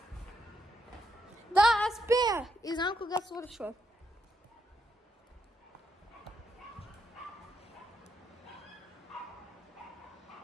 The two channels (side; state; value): both; normal; correlation 0.81